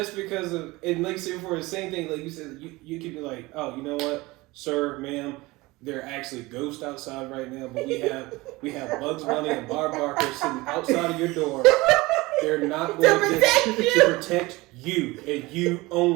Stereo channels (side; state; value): left; quieter; 21.5 dB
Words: because of, and like say for the same thing, like you said, you could be like, oh, you know what, sir, ma'am, there are actually ghosts outside right now, but we have Bugs Bunny and Barb Barker sitting outside of your door. They're not going to protect you and you